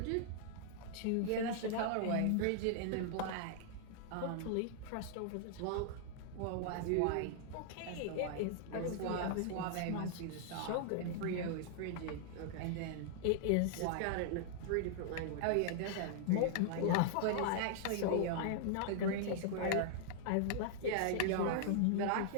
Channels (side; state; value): both; different; correlation -0.01